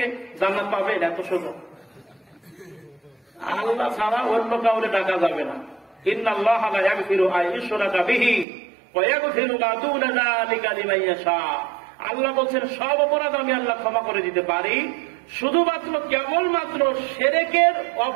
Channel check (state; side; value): drops out; left; at 8.5 s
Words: জান্নাত পাবেন, এত সোজা। আল্লাহ ছাড়া অন্য কাউরে ডাকা যাবে না। ইন্নাল্লাহা লা ইয়াগফিরু আন ইউশরাকা বিহি ওয়া ইয়াগফিরু মা দুনা যালিকা লিমান ইয়াশা। আল্লাহ বলছেন সব অপরাধ আমি আল্লাহ ক্ষমা করে দিতে পারি, শুধুমাত্র কেবলমাত্র শিরকের